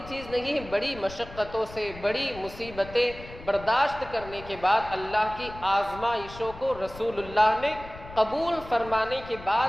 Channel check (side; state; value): left; noise; rumble, 16 dB below the sound